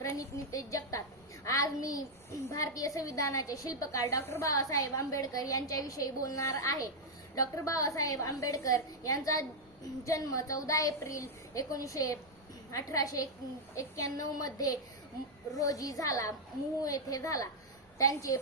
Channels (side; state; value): both; normal; correlation -0.03